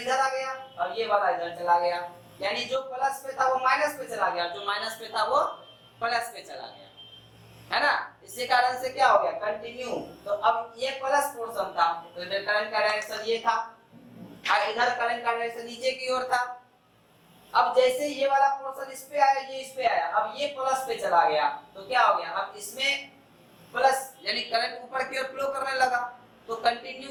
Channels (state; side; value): identical; both; correlation 1.00